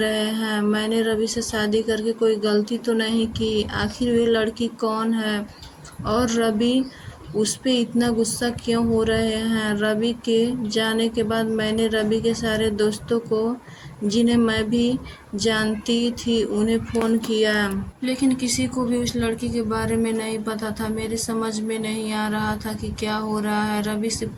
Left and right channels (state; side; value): identical; both; correlation 1.00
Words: हैं? मैंने रवि से शादी करके कोई गलती तो नहीं की? आखिर वे लड़की कौन है और रवि उस पे इतना गुस्सा क्यों हो रहे हैं? रवि के जाने के बाद मैंने रवि के सारे दोस्तों को, जिन्हें मैं भी जानती थी, उन्हें फ़ोन किया, लेकिन किसी को भी उस लड़की के बारे में नहीं पता था। मेरी समझ में नहीं आ रहा था कि क्या हो रहा है। रवि से